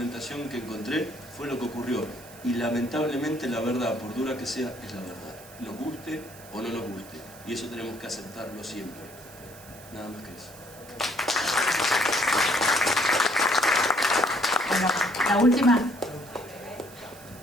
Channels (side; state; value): right; noise; hiss, 20 dB below the sound